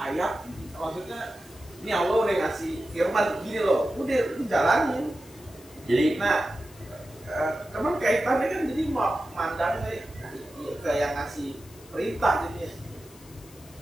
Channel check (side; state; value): left; noise; hiss, 23 dB below the sound